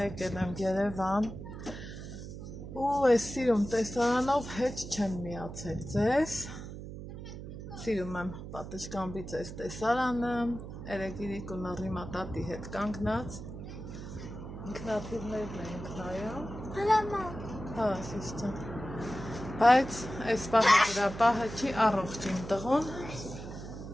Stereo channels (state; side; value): noise; right; hum, 10 dB below the sound